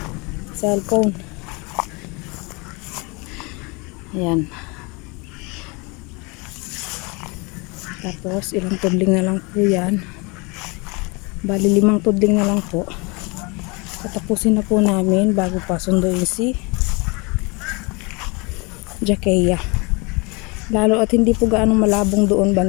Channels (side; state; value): right; quieter; 28.8 dB